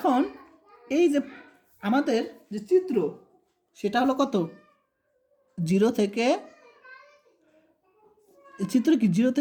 এই যে আমাদের যে চিত্র সেটা হলো কত, 0 থেকে, চিত্র কি 0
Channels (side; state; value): both; identical; correlation 1.00